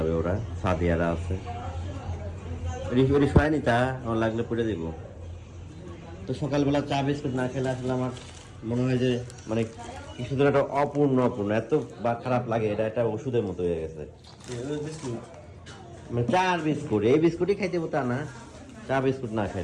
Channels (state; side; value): identical; both; correlation 1.00